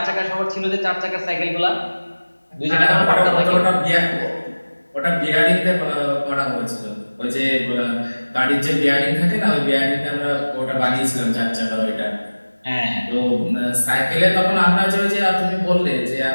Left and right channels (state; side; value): inverted; both; correlation -1.00